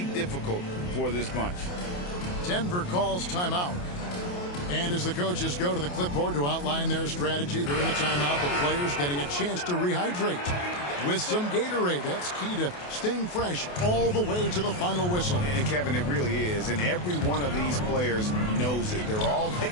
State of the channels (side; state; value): right; late; 28 ms